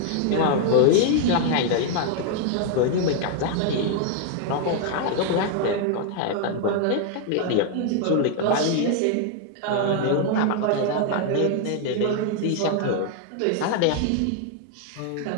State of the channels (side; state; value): both; different; correlation 0.00